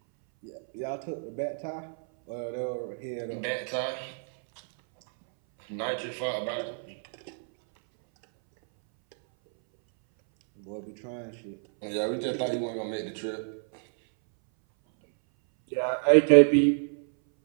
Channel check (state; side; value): silent; left; 59 dB below the other